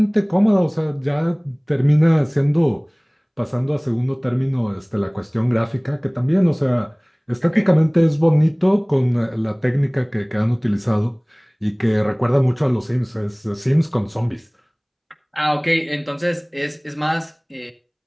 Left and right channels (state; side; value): identical; both; correlation 1.00